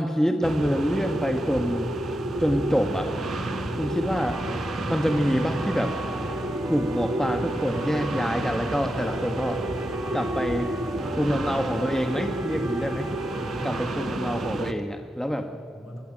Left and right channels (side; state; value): both; normal; correlation 0.88